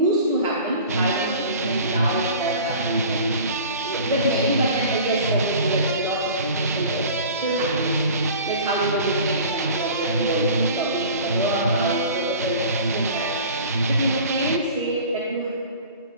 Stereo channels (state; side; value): inverted; both; correlation -0.42